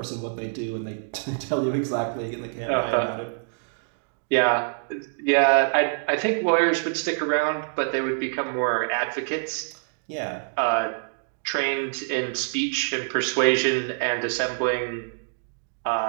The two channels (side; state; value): left; silent; digital silence